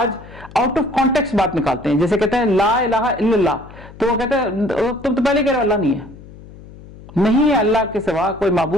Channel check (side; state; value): left; noise; hum, 19 dB below the sound